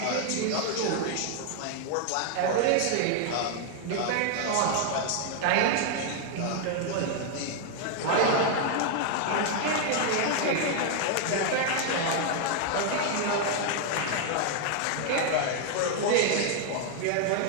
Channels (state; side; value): different; both; correlation 0.00